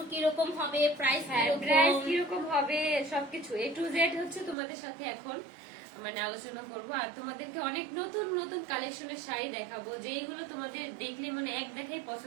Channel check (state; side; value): drops out; left; at 4.5 s